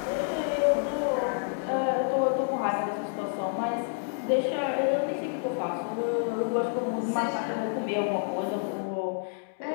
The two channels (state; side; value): silent; right; 59 dB below the other